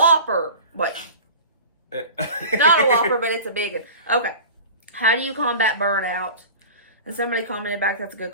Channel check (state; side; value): inverted; both; correlation -0.37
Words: Wait, not a Whopper, but it's a big one. Okay, how do you combat burnout? And somebody commented back, that's a good